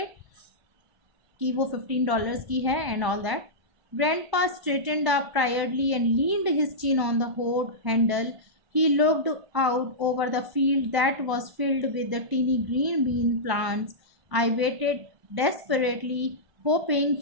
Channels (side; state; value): left; late; 1.0 ms